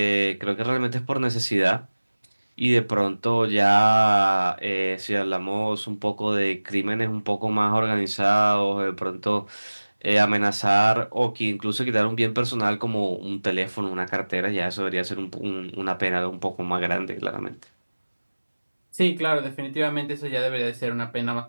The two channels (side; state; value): both; inverted; correlation -1.00